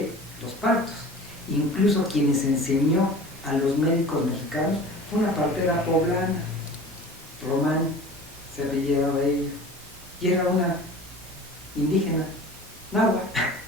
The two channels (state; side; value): normal; both; correlation 0.40